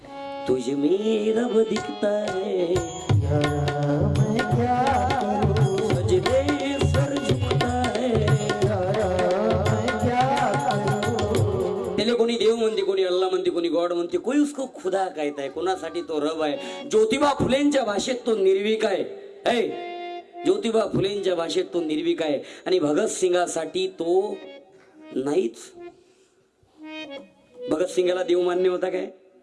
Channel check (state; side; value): identical; both; correlation 1.00